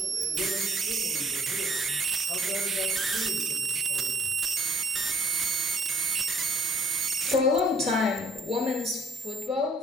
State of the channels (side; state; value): both; normal; correlation 0.62